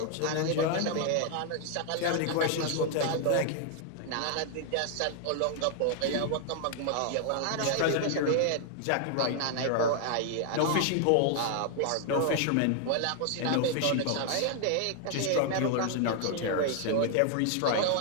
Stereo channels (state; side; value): different; both; correlation 0.00